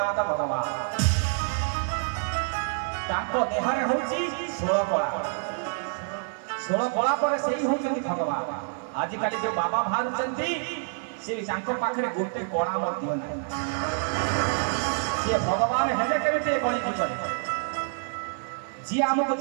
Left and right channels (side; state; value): left; silent; digital silence